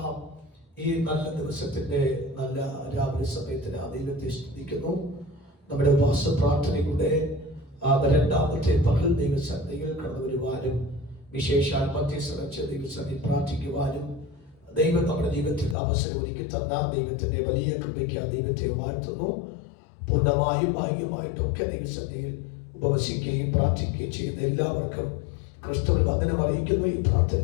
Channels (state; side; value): drops out; right; at 15.8 s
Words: ഈ നല്ല ദിവസത്തിന്റെ നല്ല രാവിലെ സമയത്തിന് ദൈവത്തെ സ്തുതിക്കുന്നു. നമ്മുടെ ഉപവാസ പ്രാർത്ഥനയുടെ രണ്ടാമത്തെ പകൽ ദൈവസന്നിധിയിൽ കടന്നു വരുവാനും വിശേഷാൽ മധ്യസ്ഥ ദൈവസന്നിധി പ്രാർത്ഥിക്കുവാനും ദൈവം നമ്മുടെ ജീവിതത്തിൽ അവസരം ഒരുക്കി തന്ന ദൈവത്തിന്റെ വലിയ കൃപയ്ക്ക് ദൈവത്തെ വാഴ്ത്തുന്നു. പൂർണ്ണമായും ഭാഗ്യമായിട്ടൊക്കെ ദൈവസന്നിധിയിൽ ഉപവസിക്കുകയും പ്രാർത്ഥിക്കുകയും ചെയ്യുന്ന എല്ലാവർക്കും ക്രിസ്തുവിൽ വന്ദനം അറിയിക്കുന്നു. ഈ